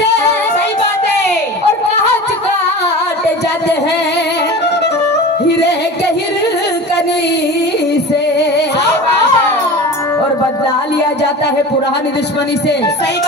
सही बात है. और कांच काटे जाते हैं हीरे के हिरकनी से. और बदला लिया जाता है पुरानी दुश्मनी से. सही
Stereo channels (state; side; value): normal; both; correlation 0.34